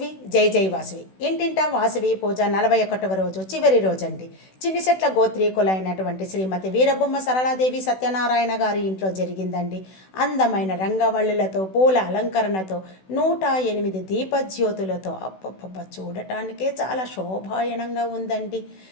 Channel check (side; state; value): right; late; 16 ms